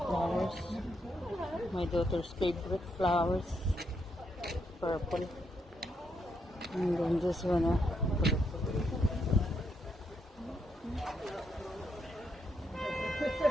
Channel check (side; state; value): both; normal; correlation 0.78